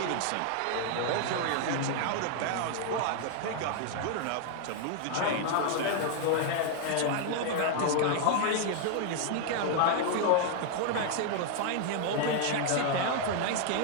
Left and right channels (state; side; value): different; both; correlation 0.00